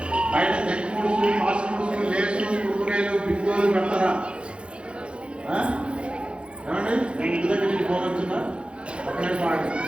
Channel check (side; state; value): left; late; 0.057 ms